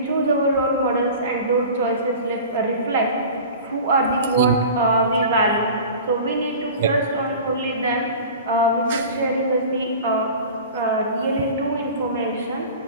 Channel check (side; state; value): both; inverted; correlation -0.38